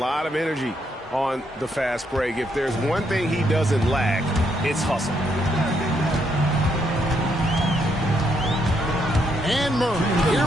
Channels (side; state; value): both; normal; correlation 0.75